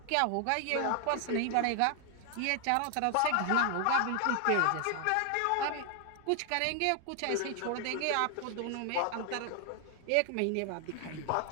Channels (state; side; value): different; both; correlation 0.00